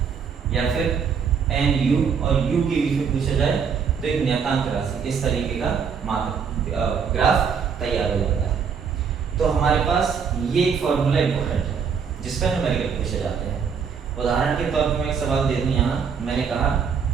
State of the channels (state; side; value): quieter; left; 6.5 dB